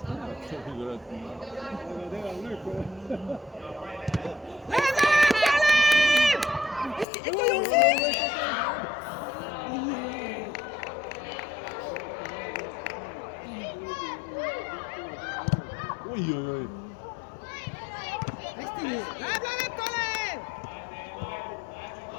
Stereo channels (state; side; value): drops out; right; at 7.1 s